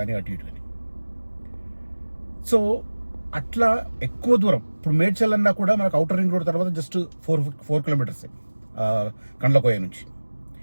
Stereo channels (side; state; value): both; inverted; correlation -1.00